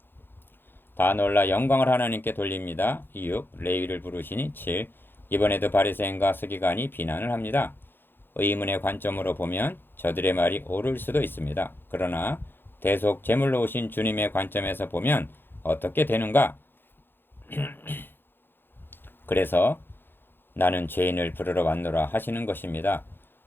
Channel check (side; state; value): right; late; 0.10 ms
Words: 다 놀라 영광을 하나님께 돌립니다. 6. 레위를 부르시니 7. 이번에도 바리새인과 서기관이 비난을 합니다. 의문의 관점으로 보면 저들의 말이 옳을 수도 있습니다. 그러나 대속 제물로 오신 주님의 관점에서 보면 어떻게 되는가? 그래서 나는 죄인을 부르러 왔노라 하시는 것입니다.